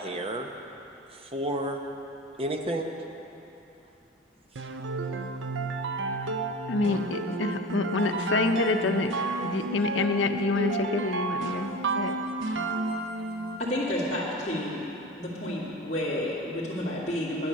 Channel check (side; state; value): both; normal; correlation 0.32